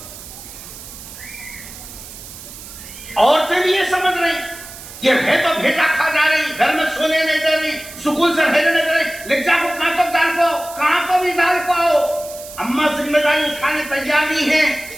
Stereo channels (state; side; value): noise; right; hiss, 15 dB below the sound